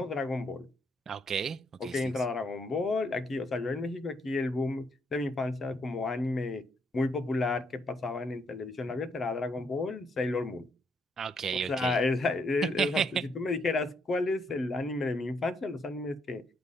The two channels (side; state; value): both; normal; correlation 0.73